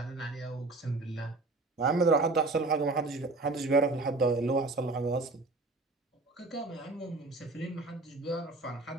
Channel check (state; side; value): quieter; left; 3.3 dB